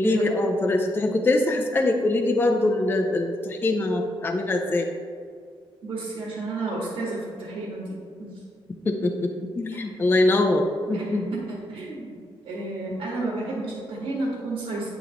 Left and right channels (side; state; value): both; normal; correlation 0.80